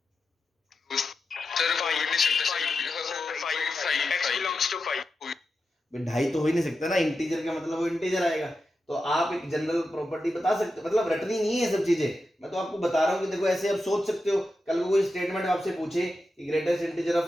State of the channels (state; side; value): normal; both; correlation 0.90